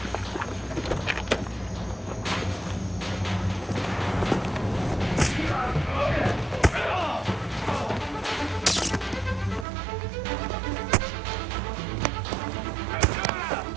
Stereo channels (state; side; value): drops out; left; at 9.7 s